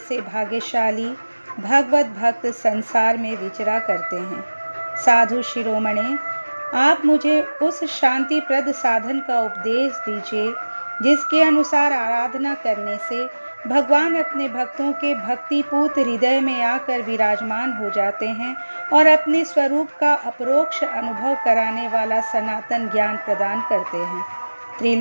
भाग्यशाली भगवत भक्त संसार में विचरा करते हैं। साधु शिरोमणे, आप मुझे उस शांतिप्रद साधन का उपदेश दीजिए जिसके अनुसार आराधना करने से भगवान अपने भक्तों के भक्तिपूत हृदय में आकर विराजमान हो जाते हैं और अपने स्वरूप का अपरोक्ष अनुभव कराने वाला सनातन ज्ञान प्रदान करते हैं।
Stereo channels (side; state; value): both; inverted; correlation -1.00